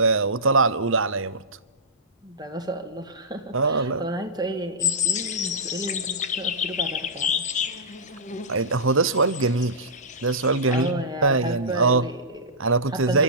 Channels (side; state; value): both; normal; correlation -0.19